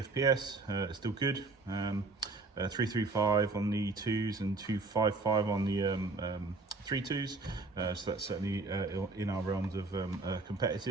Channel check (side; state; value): left; quieter; 3.5 dB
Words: it's still good. 335 on the 2s and 255 on the 3.2s, so that's certainly in our realms of